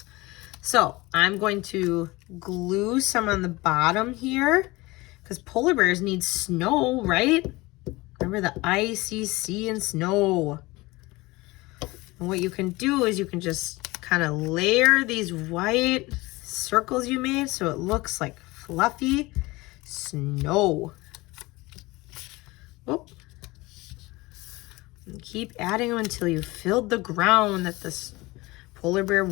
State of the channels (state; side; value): quieter; right; 21.7 dB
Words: So I'm going to glue some on the bottom here because polar bears need snow, right? Remember the icy sea and snow. And what you can do is you can just kind of layer these white circles you made so it looks like fluffy snow. Oh. And keep adding them until you filled the ground that this polar bear